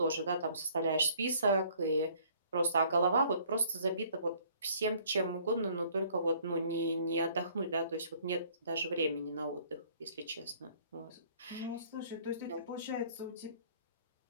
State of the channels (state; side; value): inverted; both; correlation -0.58